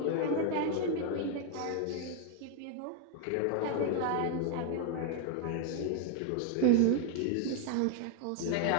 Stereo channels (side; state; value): both; different; correlation 0.01